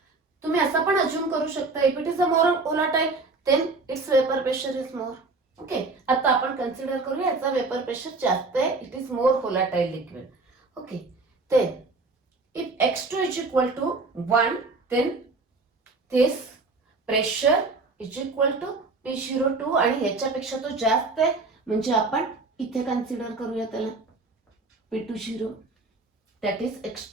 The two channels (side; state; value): left; quieter; 3.6 dB